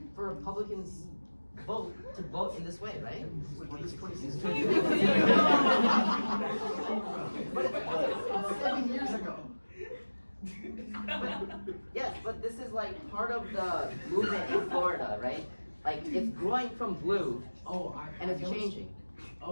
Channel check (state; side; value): inverted; both; correlation -1.00